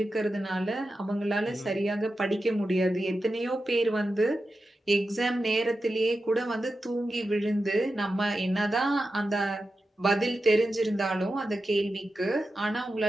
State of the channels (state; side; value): normal; both; correlation 0.91